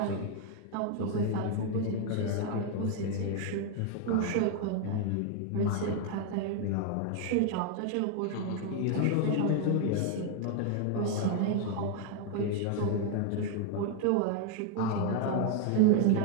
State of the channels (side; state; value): both; different; correlation 0.00